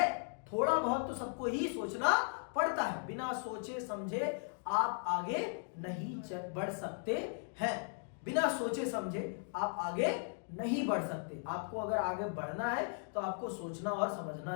थोड़ा बहुत तो सबको ही सोचना पड़ता है। बिना सोचे समझे आप आगे नहीं बढ़ सकते हैं। बिना सोचे समझे आप आगे नहीं बढ़ सकते। आपको अगर आगे बढ़ना है तो आपको सोचना और समझना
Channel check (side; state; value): right; silent; 53 dB below the other